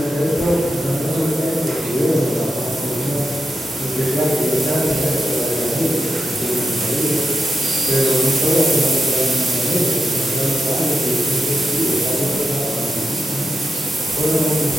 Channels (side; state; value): both; normal; correlation 0.87